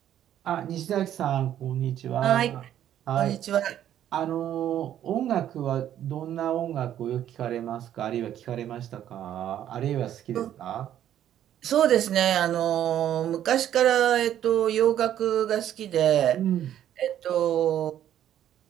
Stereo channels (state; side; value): quieter; left; 11.1 dB